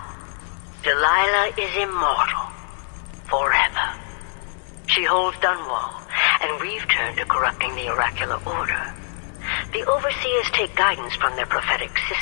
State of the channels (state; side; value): silent; right; digital silence